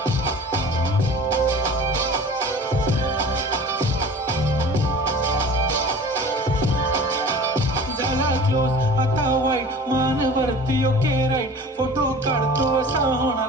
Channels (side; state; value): both; normal; correlation 0.41